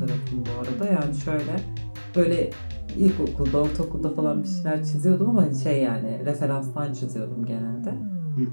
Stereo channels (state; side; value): inverted; both; correlation -1.00